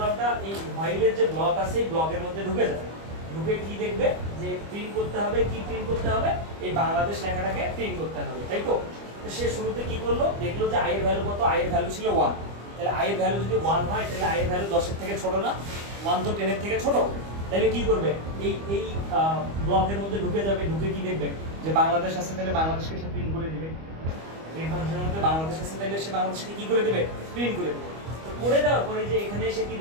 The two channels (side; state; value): left; late; 25 ms